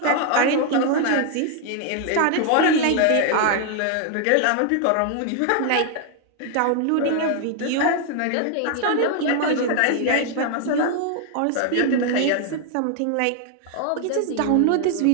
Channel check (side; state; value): both; different; correlation 0.00